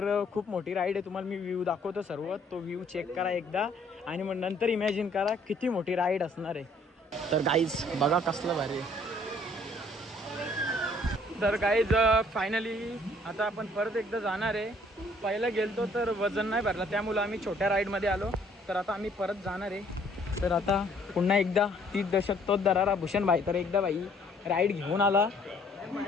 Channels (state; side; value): normal; both; correlation 0.61